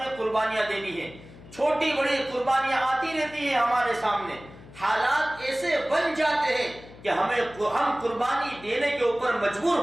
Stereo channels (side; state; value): left; noise; hum, 19 dB below the sound